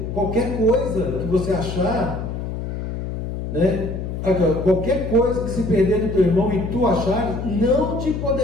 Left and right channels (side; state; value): left; noise; hum, 5 dB below the sound